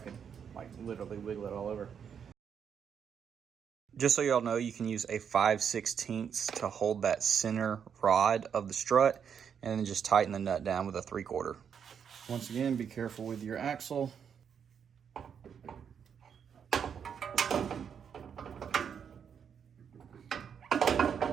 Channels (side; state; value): left; quieter; 7.5 dB